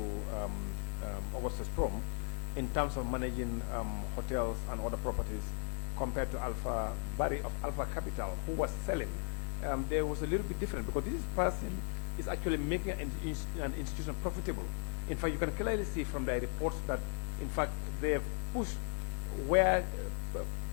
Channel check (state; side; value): silent; right; 53 dB below the other